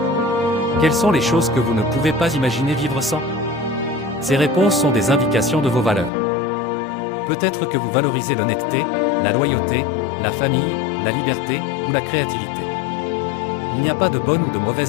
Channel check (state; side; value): drops out; right; at 6.1 s